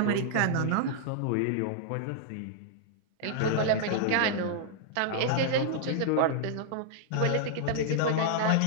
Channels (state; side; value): different; both; correlation -0.01